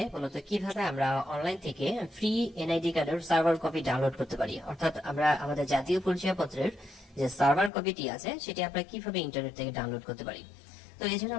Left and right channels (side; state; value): right; drops out; at 7.7 s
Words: মূলত কিভাবে আমরা অনলাইন থেকে ফ্রি এনআইডি কার্ডের সার্ভার কপি ডাউনলোড করতে পারি, অর্থাৎ আমরা আমাদের জাতীয় পরিচয়পত্রের যে সার্ভার কপিটি আছে সেটি আমরা কিভাবে ইন্টারনেট থেকে ডাউনলোড করতে পারি। তো এই জন্য